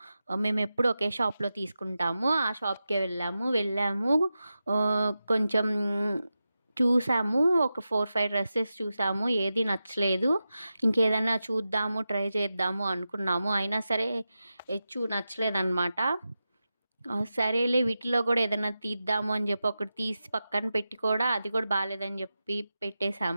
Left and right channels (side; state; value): both; inverted; correlation -0.92